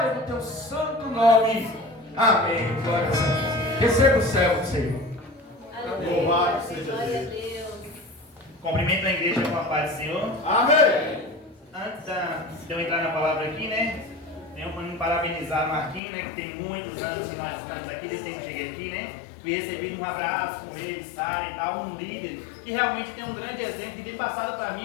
do teu santo nome. Amém. Glória a Deus. Receba o céu, Senhor. Louvado seja Deus. Cumprimento a igreja com a paz do Senhor. Amém. Antes de eu entrar na palavra aqui, né? Tenho para me parabenizar o Marquinhos, né? Que tem muitos anos que nós estamos aqui, desde que eu cheguei aqui, né? E recebi um abraço com ele, Sara e tal, um líder que realmente tem um grande exemplo que tem passado para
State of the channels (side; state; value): right; drops out; at 16.0 s